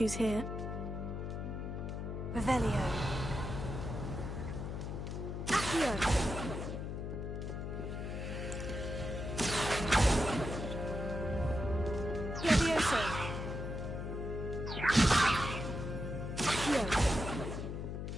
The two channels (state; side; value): noise; left; hum, 4 dB below the sound